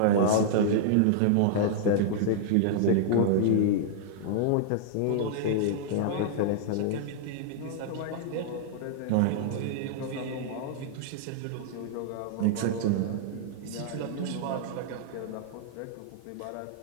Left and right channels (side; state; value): both; different; correlation -0.01